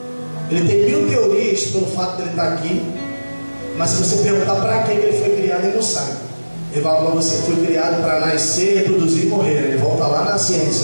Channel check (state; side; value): inverted; both; correlation -1.00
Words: Ele tem 1000 teorias pelo fato de ele estar aqui, mas se você perguntar para que ele foi criado, ele não sabe. Ele vai falar: você foi criado para nascer, reproduzir e morrer. Ele volta lá na